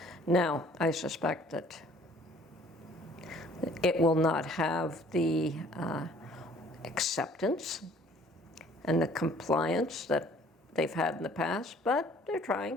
Now, I suspect that it will not have the acceptance and the compliance that they've had in the past, but they're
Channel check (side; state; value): both; normal; correlation 0.56